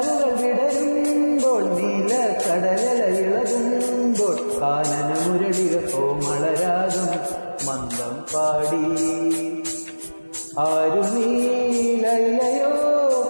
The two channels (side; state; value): both; inverted; correlation -1.00